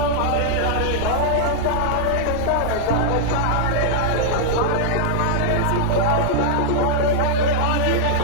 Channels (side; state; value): both; different; correlation -0.01